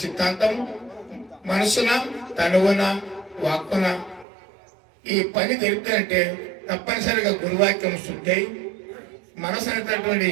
సిద్ధాంతం మనసున, తనువున, వాక్కున ఈ పని జరిపినట్టే తప్పనిసరిగా గురువాక్యం శుద్ధి మనసు అనేటటువంటి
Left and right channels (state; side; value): drops out; left; at 4.2 s